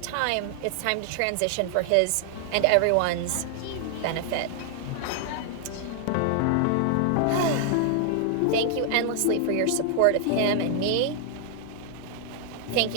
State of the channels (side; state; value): both; different; correlation 0.00